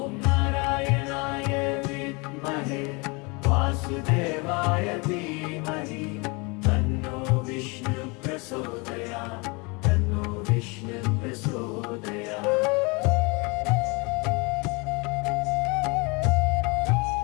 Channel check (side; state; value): right; quieter; 28.9 dB